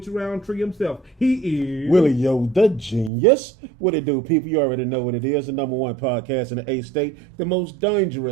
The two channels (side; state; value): left; drops out; at 3.1 s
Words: Roundtree himself. He is Willie Yo, the genius. What it do, people? You already know what it is. The number one podcast in the A state, the most